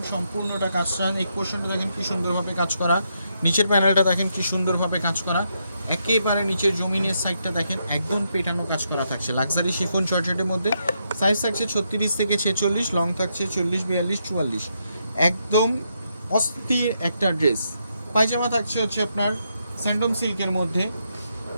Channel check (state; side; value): inverted; both; correlation -0.79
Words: সম্পূর্ণটা কাজ করা, এই পোর্শনটা দেখেন কি সুন্দরভাবে কাজ করা, নিচের প্যানেলটা দেখেন কি সুন্দরভাবে কাজ করা, একেবারে নিচের জমিনের সাইডটা দেখেন একদম পেটানো কাজ করা থাকছে লাক্সারি শিফন জর্জেটের মধ্যে। সাইজ থাকছে 36 থেকে 46, লং থাকছে 40, 42, 44। একদম অস্থির একটা ড্রেস। পায়জামা থাকছে হচ্ছে আপনার স্যান্ডম সিল্কের মধ্যে।